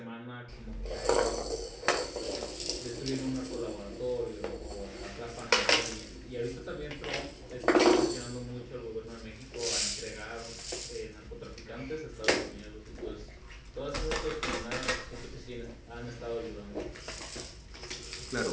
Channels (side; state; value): both; identical; correlation 1.00